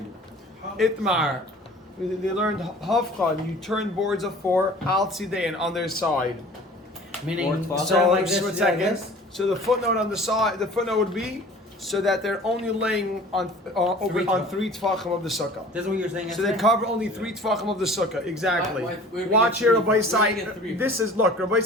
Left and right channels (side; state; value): both; normal; correlation 0.45